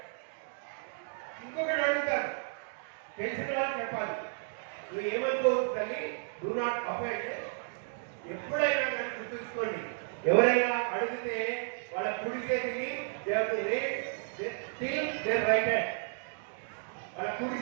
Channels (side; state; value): left; silent; digital silence